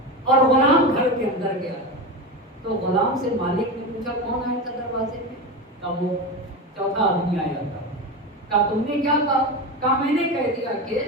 اور غلام گھر کے اندر گیا. تو غلام سے مالک نے پوچھا کون آیا تھا دروازے میں؟ کہا وہ چوتھا آدمی آیا تھا. کہا تم نے کیا کہا؟ کہا میں نے کہہ دیا کہ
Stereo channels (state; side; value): normal; both; correlation 0.21